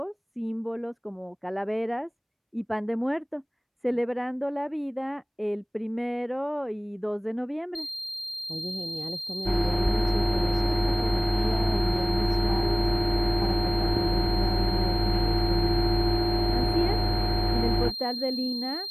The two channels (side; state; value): both; identical; correlation 1.00